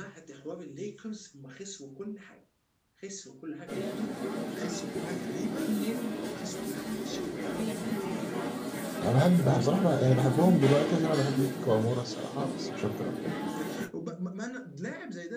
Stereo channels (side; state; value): both; identical; correlation 1.00